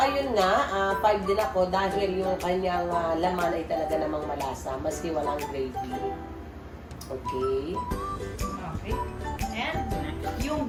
ayun nga, 5 din ako dahil yung kanyang laman ay talaga namang malasa, maski walang gravy. Okay. Okay. And yung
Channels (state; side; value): identical; both; correlation 1.00